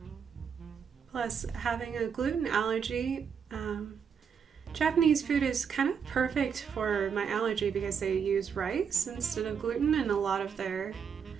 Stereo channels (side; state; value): left; quieter; 6.9 dB